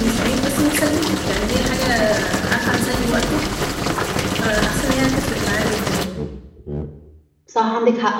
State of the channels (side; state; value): both; identical; correlation 1.00